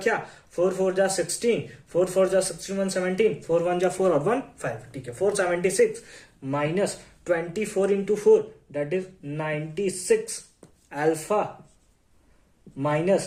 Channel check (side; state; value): both; identical; correlation 1.00